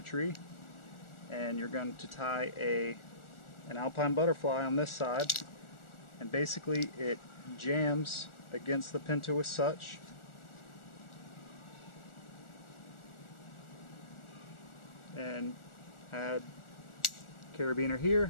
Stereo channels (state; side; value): late; right; 1.4 ms